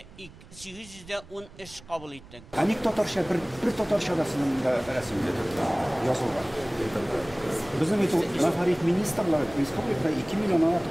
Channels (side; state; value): right; noise; rumble, 21 dB below the sound